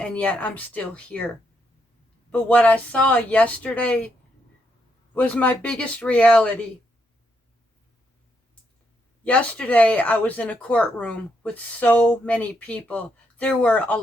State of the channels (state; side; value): normal; both; correlation 0.78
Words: yet I'm still here. But what I saw yesterday was my biggest reality. Yesterday, I was in a courtroom with so many people. There were a